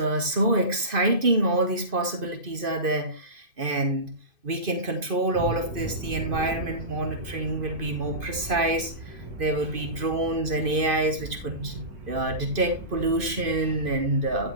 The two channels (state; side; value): late; left; 2.5 ms